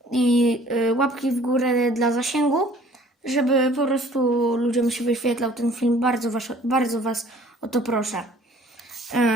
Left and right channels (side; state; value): both; normal; correlation 0.54